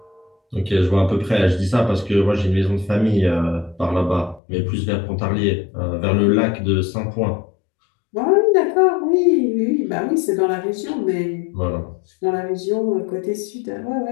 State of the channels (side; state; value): right; drops out; at 4.4 s